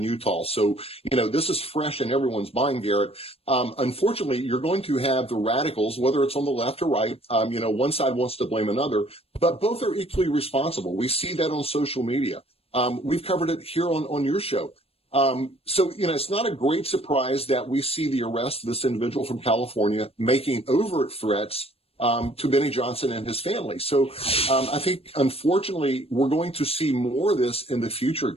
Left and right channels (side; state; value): right; late; 0.28 ms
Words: Utah. So, this is fresh in everyone's mind, Garrett. Unfortunately, you're going to have the radicals, whether it's on the left or right. One side wants to blame another, but both are equally responsible. We see that on social media. We've covered it here on your show. So, it's not a great surprise that we see the arrest of this individual from California making overt threats to Benny Johnson and his family. So I think, unfortunately, we're going to see more of this in the future,